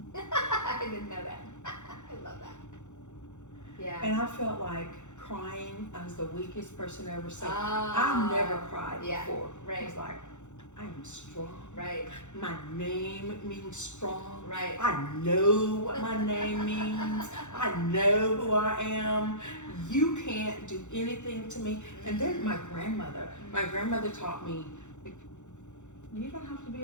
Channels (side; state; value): right; late; 0.84 ms